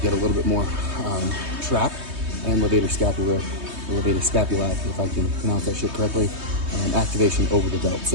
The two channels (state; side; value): late; left; 3.2 ms